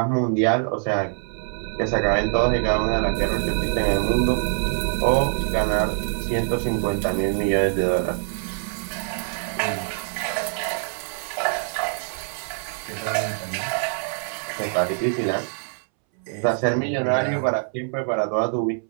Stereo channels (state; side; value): silent; left; 62 dB below the other